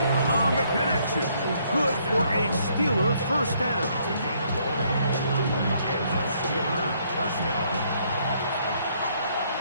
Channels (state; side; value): inverted; both; correlation -0.68